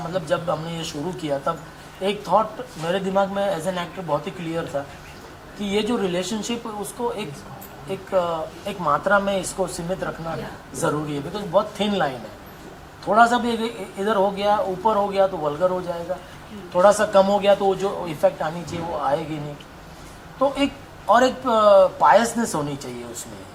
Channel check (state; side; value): identical; both; correlation 1.00